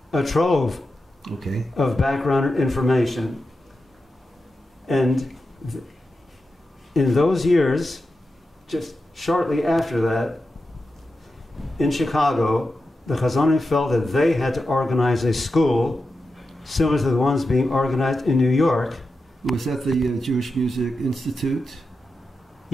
trove of background information. And in those years, just shortly after that, in Chicago, the Chazonim felt that they had to organize a school similar to the ones being organized in New York. Was that the Jewish Music Institute?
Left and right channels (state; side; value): normal; both; correlation 0.90